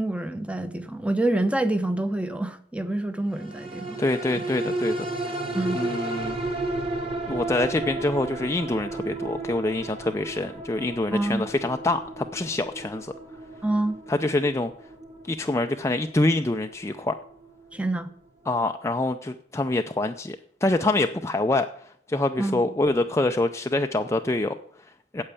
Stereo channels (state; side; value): normal; both; correlation 0.71